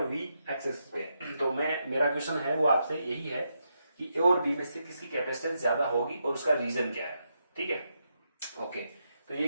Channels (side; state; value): both; inverted; correlation -0.83